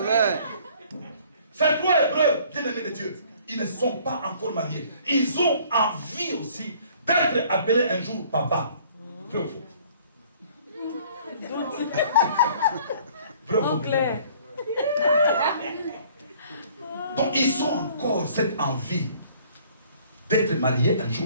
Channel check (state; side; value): inverted; both; correlation -0.55